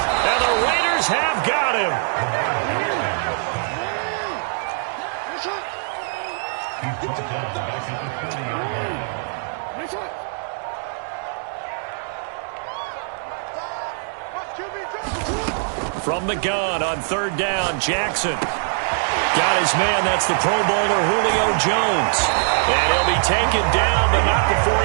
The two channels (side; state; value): left; silent; digital silence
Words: And the Raiders have got him. From the gun on 3rd down, Jackson. Got his man, that's the Pro Bowler Julio Jones. And he'll be taken down, but not before